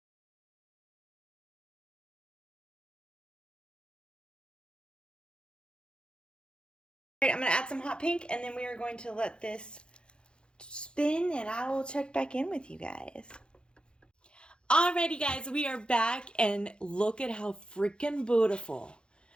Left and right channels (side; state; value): right; late; 0.053 ms